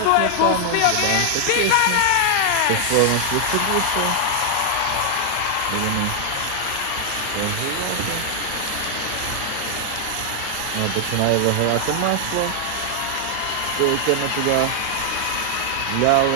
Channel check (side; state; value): both; different; correlation 0.00